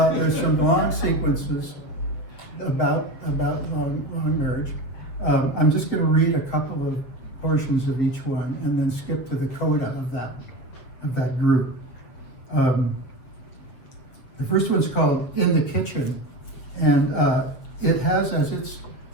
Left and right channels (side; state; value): right; late; 7.7 ms